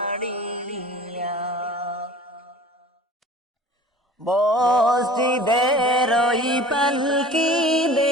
মসজিদের ওই পালকি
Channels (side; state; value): both; normal; correlation 0.43